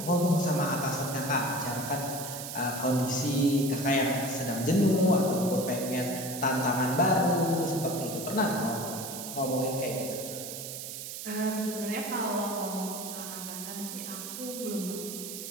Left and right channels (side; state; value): right; noise; hiss, 8 dB below the sound